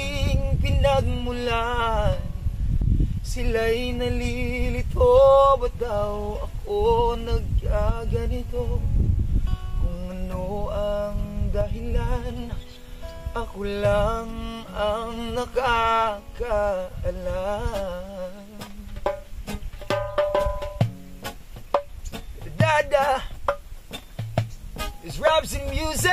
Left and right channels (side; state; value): both; identical; correlation 1.00